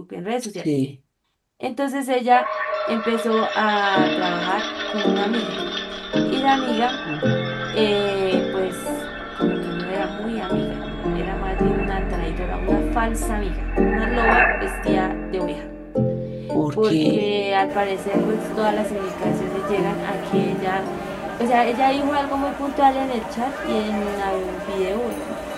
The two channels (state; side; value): identical; both; correlation 1.00